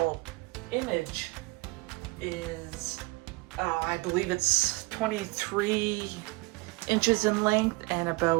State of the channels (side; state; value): left; quieter; 24.9 dB